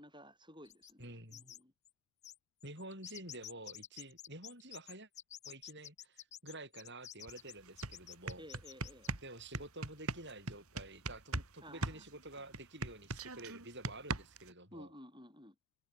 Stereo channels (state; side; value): normal; both; correlation 0.33